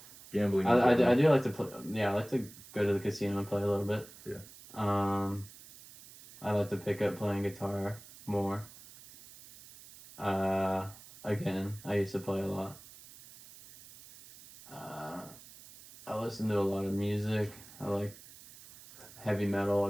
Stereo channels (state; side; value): noise; right; hiss, 19 dB below the sound